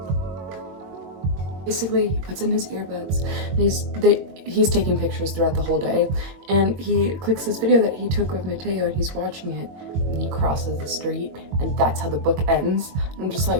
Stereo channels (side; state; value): left; late; 22 ms